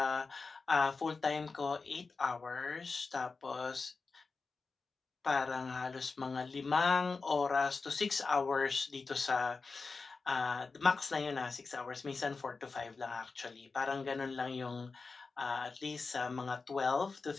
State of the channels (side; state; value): right; quieter; 4.3 dB